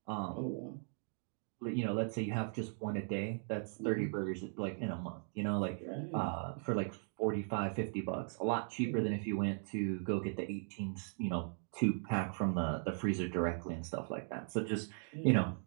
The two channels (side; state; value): left; silent; 52 dB below the other